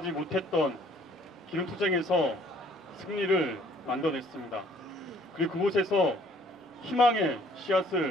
못했던 기름투쟁에서 승리를 만들어냈습니다. 그리고 그곳에서 희망의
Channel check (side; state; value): both; normal; correlation 0.59